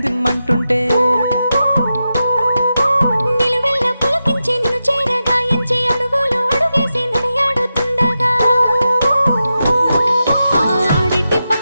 నిలువెల్ల పులకించి నిన్ను చేరగాయించి అడుగులు అడుగేసి నడియాడుతుండగా ఆడెట్టి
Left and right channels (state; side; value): inverted; both; correlation -0.90